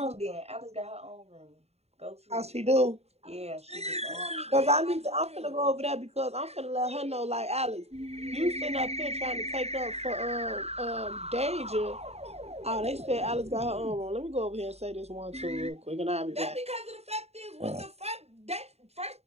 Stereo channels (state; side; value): late; left; 0.30 ms